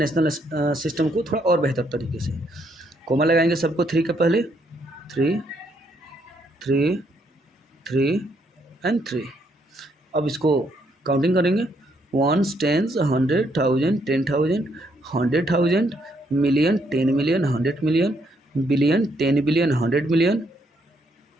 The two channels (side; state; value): both; normal; correlation 0.73